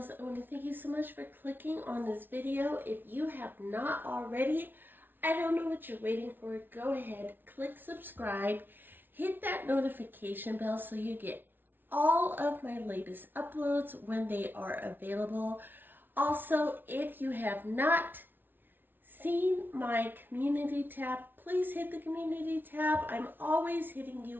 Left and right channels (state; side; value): late; left; 0.096 ms